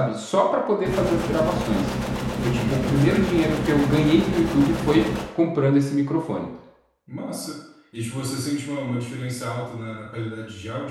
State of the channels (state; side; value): identical; both; correlation 1.00